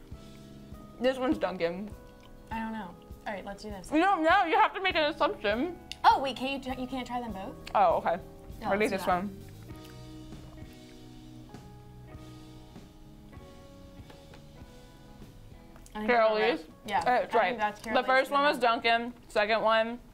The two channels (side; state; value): both; identical; correlation 1.00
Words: This one's Dunkin'. I don't know. All right, let's do this. You don't know. You have to make an assumption. Oh, wait, you can't try them both? Oh, okay. No, Ready? let's do This that. one. Carol Lee's? Yeah. That's I right. think that's Carol The first Lee's. one was Dunkin'. Second one,